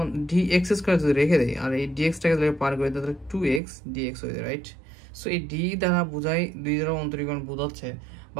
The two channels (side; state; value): left; drops out; at 3.6 s